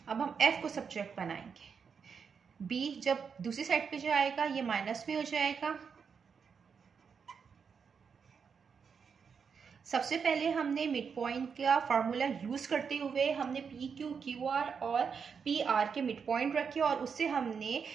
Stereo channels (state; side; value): quieter; left; 6.2 dB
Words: अब हम f को सब्जेक्ट बनाएंगे। b जब दूसरी साइड पे जाएगा ये माइनस में हो जाएगा। सबसे पहले हमने मिड पॉइंट का फार्मूला यूज करते हुए हमने पी क्यू क्यू आर और पी आर के मिड पॉइंट रखे और उससे हमने